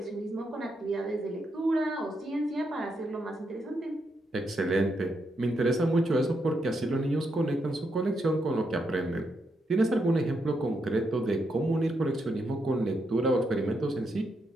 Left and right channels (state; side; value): normal; both; correlation 0.81